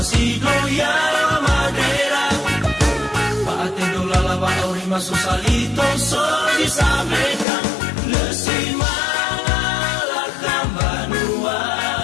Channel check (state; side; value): drops out; right; at 7.5 s